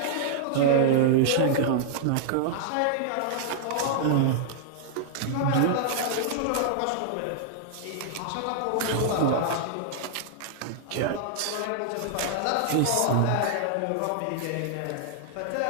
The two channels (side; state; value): both; different; correlation -0.01